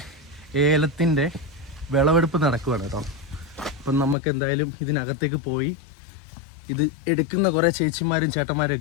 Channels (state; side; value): drops out; right; at 4.2 s